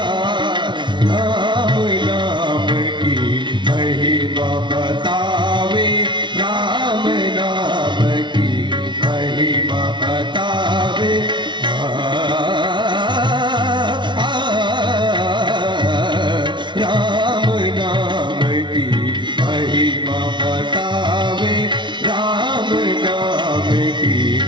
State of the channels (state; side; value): late; left; 0.23 ms